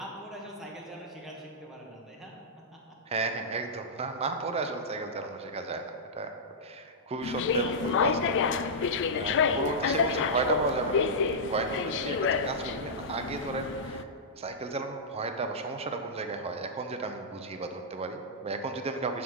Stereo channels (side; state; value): both; normal; correlation -0.13